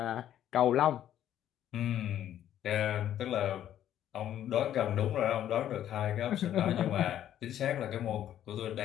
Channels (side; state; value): right; quieter; 11.2 dB